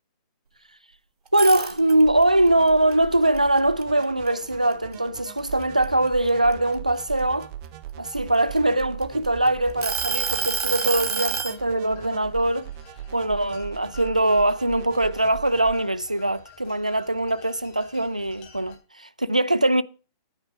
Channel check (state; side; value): inverted; both; correlation -0.84